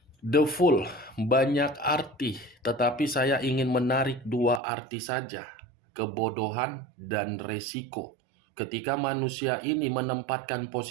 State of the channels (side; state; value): left; drops out; at 4.6 s